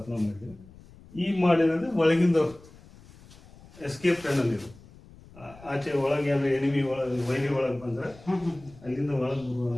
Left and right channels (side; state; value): left; noise; rumble, 22 dB below the sound